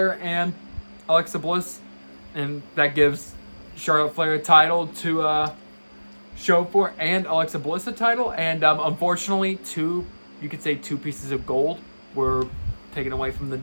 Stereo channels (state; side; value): inverted; both; correlation -1.00